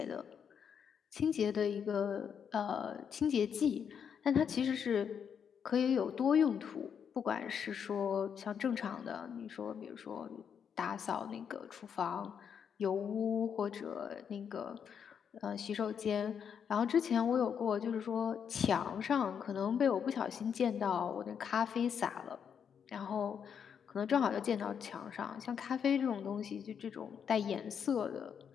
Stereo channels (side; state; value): right; quieter; 7.5 dB